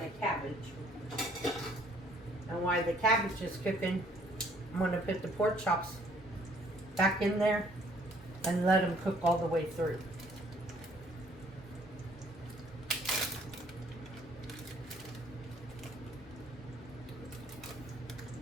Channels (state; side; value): normal; both; correlation 0.61